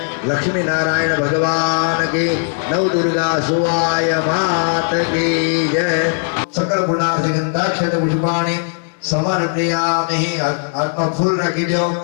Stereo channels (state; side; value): silent; right; digital silence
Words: लक्ष्मी नारायण भगवान की नव दुर्गा सुवाय मात की जय सकल गुणार्थ गंधाक्षत पुष्पाणि समर्पयामि। आत्मा फूल रखी दो